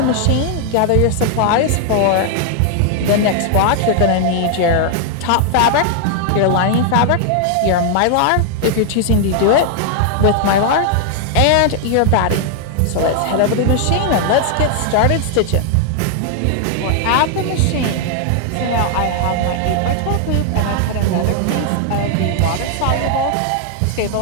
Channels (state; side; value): different; both; correlation 0.00